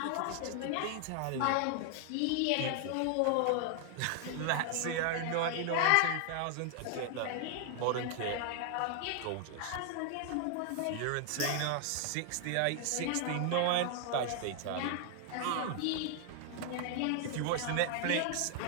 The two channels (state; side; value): different; both; correlation 0.00